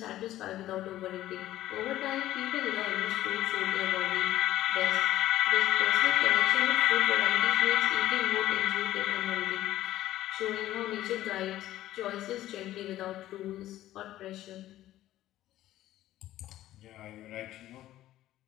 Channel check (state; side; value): quieter; right; 14.1 dB